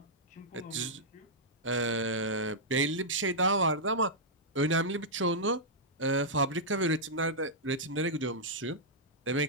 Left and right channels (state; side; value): normal; both; correlation -0.09